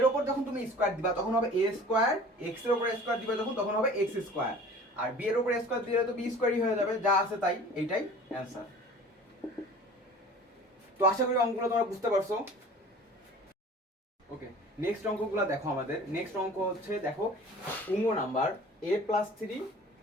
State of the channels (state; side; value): normal; both; correlation 0.44